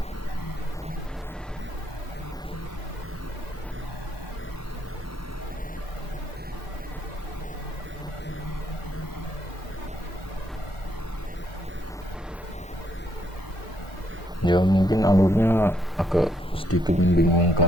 Ya, mungkin alurnya agak sedikit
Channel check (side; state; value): both; normal; correlation 0.73